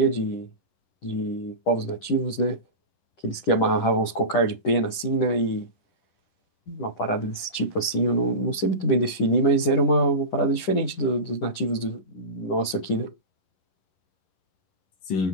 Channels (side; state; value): right; late; 10 ms